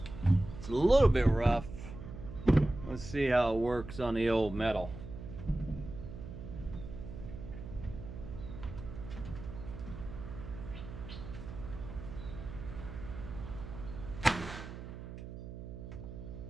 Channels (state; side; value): noise; right; hum, 10 dB below the sound